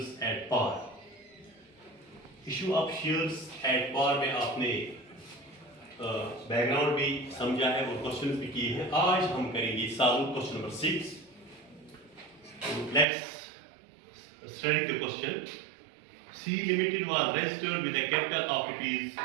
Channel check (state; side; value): drops out; left; at 13.1 s